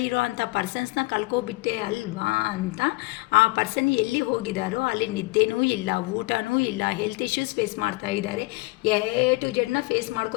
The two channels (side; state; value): right; quieter; 23.0 dB